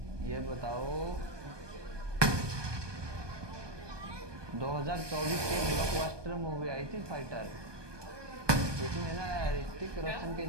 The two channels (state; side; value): late; left; 1.2 ms